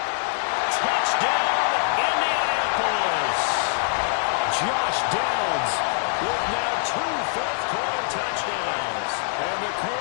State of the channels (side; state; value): right; silent; 62 dB below the other